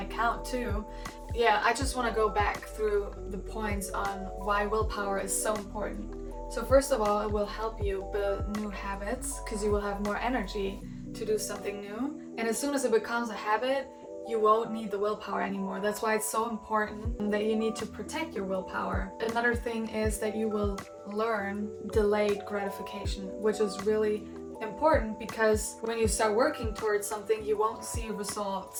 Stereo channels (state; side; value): identical; both; correlation 1.00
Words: account too. Yeah, I just want to go back through the points on why willpower is so important. So first of all, it will help you build new habits because you will have more energy to do something new, and as soon as it becomes a habit, you won't need the willpower anymore. That's why it's so important that you need to protect your willpower. Another thing is that you will learn delayed gratification, which is really important because when you start working towards something, you won't see